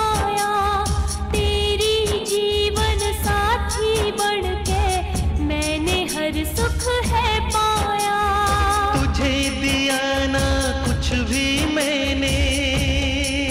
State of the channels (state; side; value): identical; both; correlation 1.00